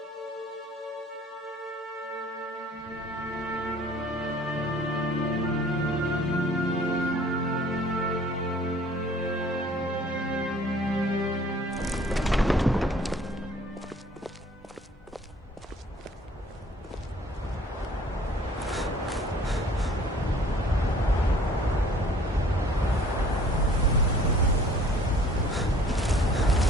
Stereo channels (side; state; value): both; normal; correlation 0.53